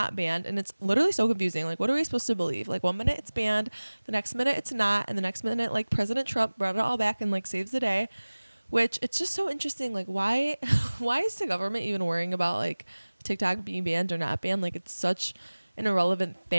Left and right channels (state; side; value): inverted; both; correlation -1.00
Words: banned, and it's literally so confusing. Like, what are we supposed to believe? Like, one minute it's banned, the next minute it's not, and the next minute, like, President Trump brought it all back and, like, saves the day, which it's just so interesting. Like, why is the government even worrying about, like, TikTok being banned or not banned? Like, it's such an irrelevant